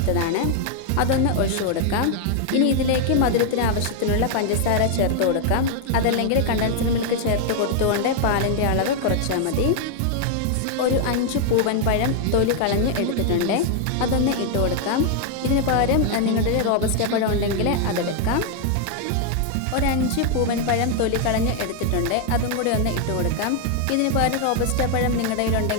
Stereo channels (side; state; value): both; different; correlation 0.00